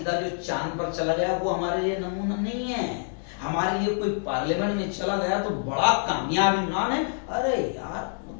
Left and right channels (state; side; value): silent; right; digital silence